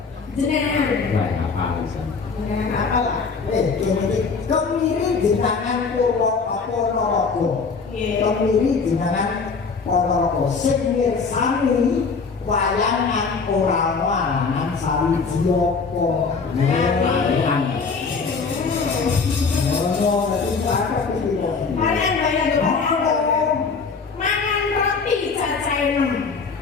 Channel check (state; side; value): quieter; right; 4.9 dB